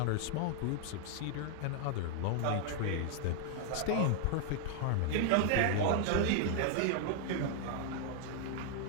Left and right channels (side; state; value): both; different; correlation 0.00